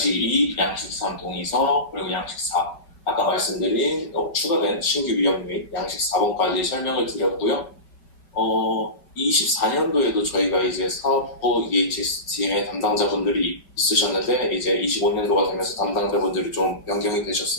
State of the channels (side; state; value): right; late; 4.7 ms